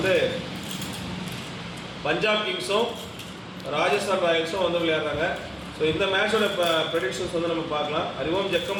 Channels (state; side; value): identical; both; correlation 1.00